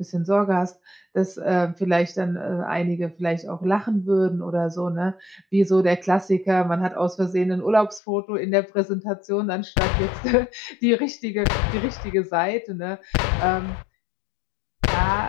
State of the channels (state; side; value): drops out; right; at 8.0 s